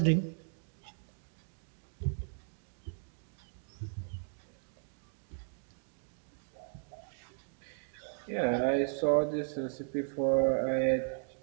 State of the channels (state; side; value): silent; left; digital silence